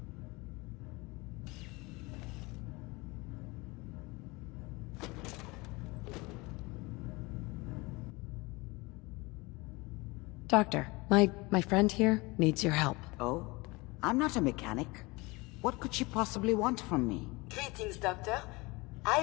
Doctor, my friend here needs your help. Oh? I'm not a mechanic. What could she possibly want from me? Greetings, Doctor. I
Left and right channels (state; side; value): quieter; right; 24.2 dB